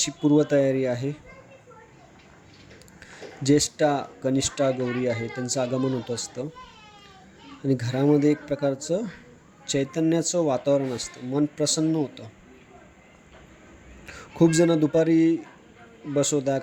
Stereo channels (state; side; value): identical; both; correlation 1.00